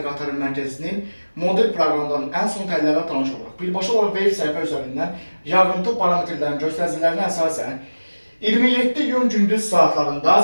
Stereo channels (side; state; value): both; inverted; correlation -1.00